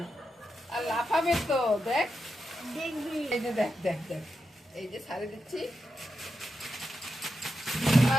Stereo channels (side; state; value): both; normal; correlation 0.87